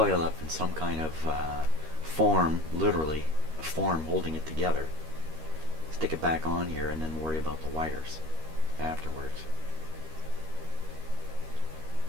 up in some kind of form, literally a form holding it together. Stick it back on here and then worry about the wires afterwards.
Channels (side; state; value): left; late; 13 ms